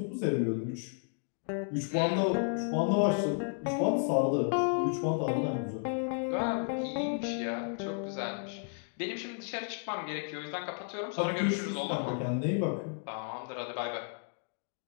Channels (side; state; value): right; silent; 56 dB below the other